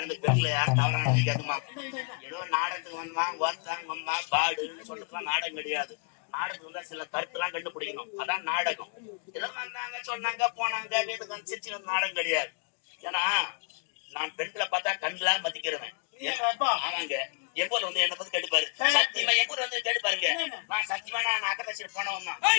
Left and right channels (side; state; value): right; quieter; 39.7 dB